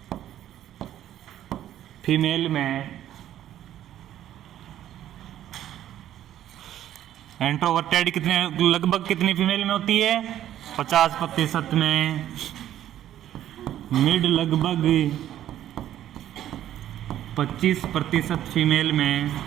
फीमेल में इंट्रोवर्टेड, कितने लगभग कितनी फीमेल में होती है 50% में, मिड लगभग 25% फीमेल में,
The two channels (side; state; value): left; quieter; 11.9 dB